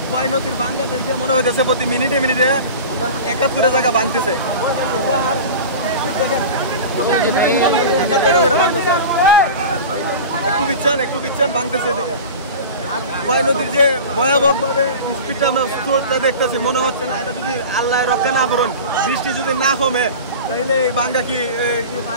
খোয়াই নদীর ভাঙ্গা দেখে মনে হইতেছে প্রতি মিনিটে মিনিটে 71 জায়গা ভাঙতেছে। একটু বিচ্ছেন ভাঙতেছে। আর খোয়াই নদীর যে ভয়াবহভাবে স্পিডটা আমরা স্রোতটা দেখতেছি, মনে হচ্ছে না এটা যদি আল্লাহ রক্ষা না করুন, বৃষ্টি যদি না কমে, তাহলে এই ভাঙ্গা কি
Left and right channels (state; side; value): inverted; both; correlation -0.33